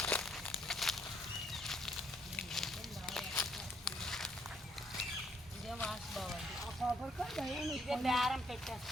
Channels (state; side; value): normal; both; correlation 0.69